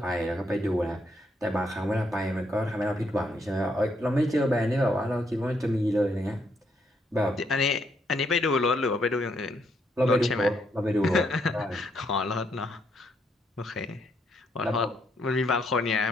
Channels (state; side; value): normal; both; correlation 0.74